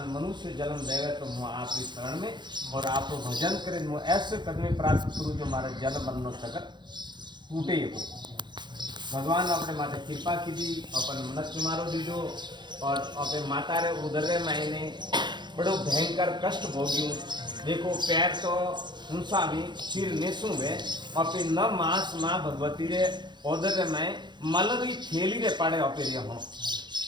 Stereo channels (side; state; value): left; late; 0.22 ms